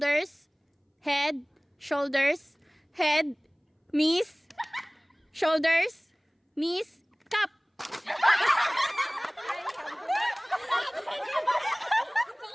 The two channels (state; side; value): identical; both; correlation 1.00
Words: head, shoulders, head, knees, shoulders, knees, cup.